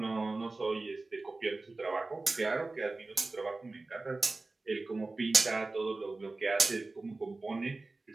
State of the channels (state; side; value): quieter; left; 3.4 dB